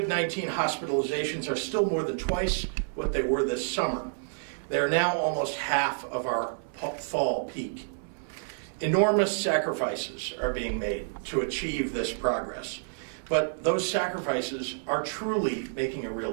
hospitalizations are still more than twice what they were this summer, they are now almost half of our fall peak. Enormous sacrifices are being made to achieve this progress, but those sacrifices are truly making a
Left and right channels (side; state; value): left; silent; 59 dB below the other